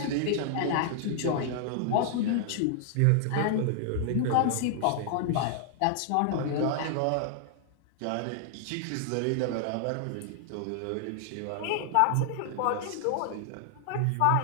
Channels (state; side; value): different; both; correlation 0.00